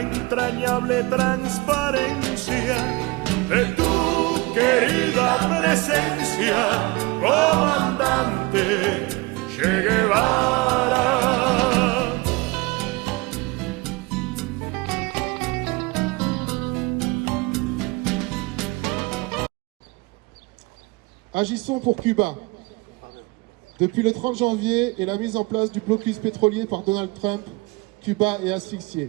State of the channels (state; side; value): quieter; left; 24.5 dB